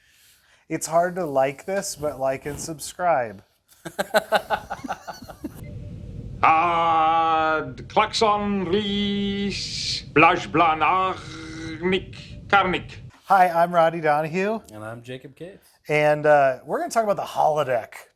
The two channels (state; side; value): identical; both; correlation 1.00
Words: It's hard to like this, but like and subscribe. Klaxon Ries Blaj Blanarnik Karnik. Hi, I'm Roddy Donahue. And I'm Jacob Case. And we're going to talk about the holodeck